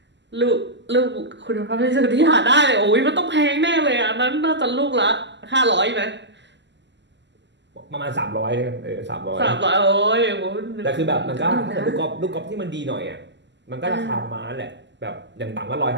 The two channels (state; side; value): late; left; 0.52 ms